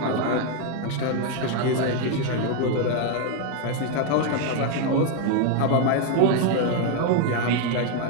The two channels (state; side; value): different; both; correlation 0.01